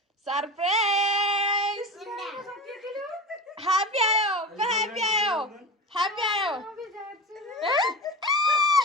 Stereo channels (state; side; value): normal; both; correlation 0.29